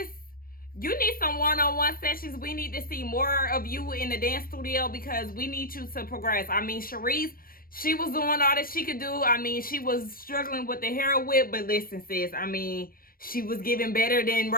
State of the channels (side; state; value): right; late; 0.42 ms